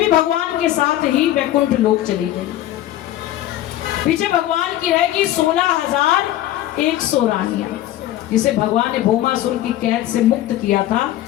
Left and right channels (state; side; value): quieter; right; 13.7 dB